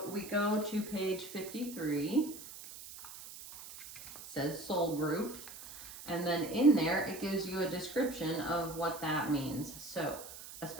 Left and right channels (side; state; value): right; noise; hiss, 13 dB below the sound